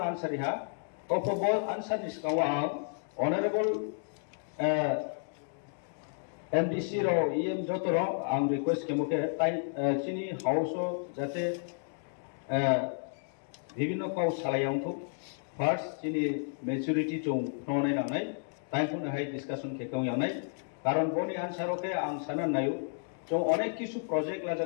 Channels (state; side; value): silent; right; digital silence